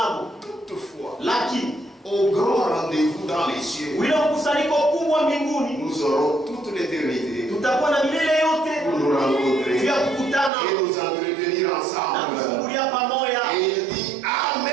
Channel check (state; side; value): drops out; left; at 10.5 s